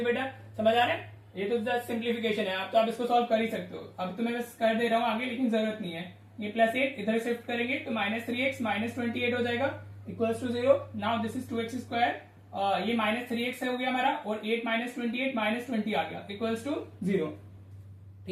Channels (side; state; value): both; identical; correlation 1.00